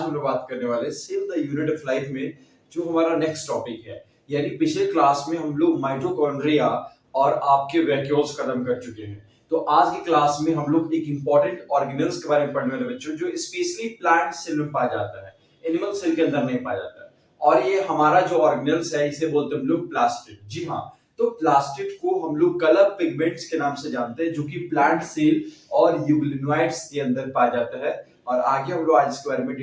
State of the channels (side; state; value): both; identical; correlation 1.00